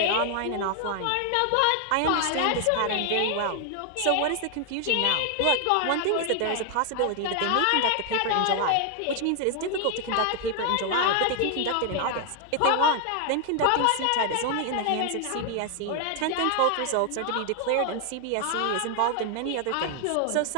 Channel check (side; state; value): both; different; correlation 0.00